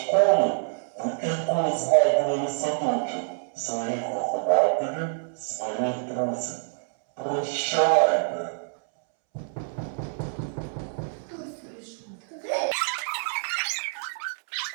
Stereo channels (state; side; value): silent; left; 60 dB below the other